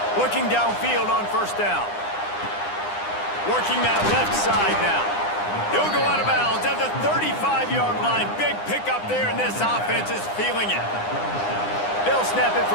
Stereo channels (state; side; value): late; right; 9.8 ms